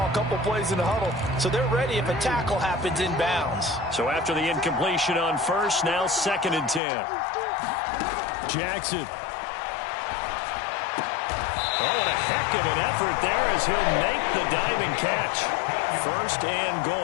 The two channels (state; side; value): drops out; right; at 6.8 s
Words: a couple plays in the huddle, so they're ready if a tackle happens inbounds. So after the incompletion on first, now 2nd and 10. Jackson. Oh, what a heck of an effort there as he'll make the diving catch. 1st and